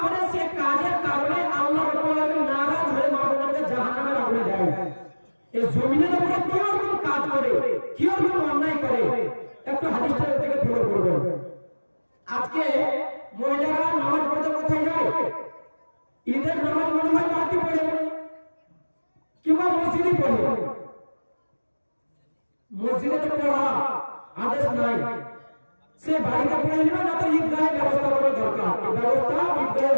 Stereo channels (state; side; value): inverted; both; correlation -1.00